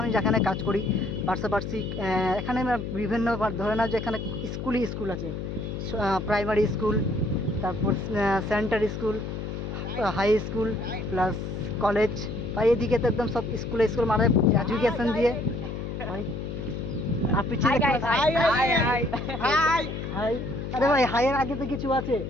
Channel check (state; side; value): noise; left; hum, 5 dB below the sound